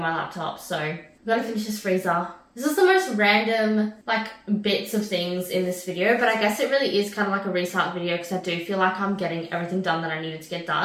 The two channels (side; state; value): both; identical; correlation 1.00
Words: my laptop, so I'm gonna finish this freezer. This is the most random, bits of things in this video, but I guess it really is kind of like a restart video because I do feel like I'm getting everything done that I needed to get